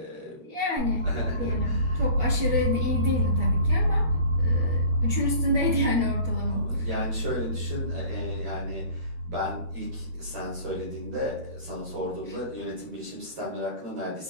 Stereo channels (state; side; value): late; left; 13 ms